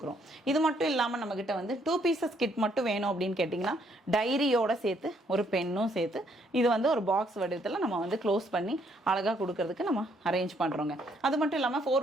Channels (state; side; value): normal; both; correlation 0.69